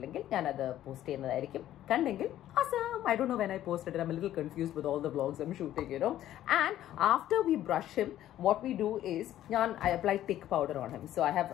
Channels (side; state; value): right; quieter; 12.7 dB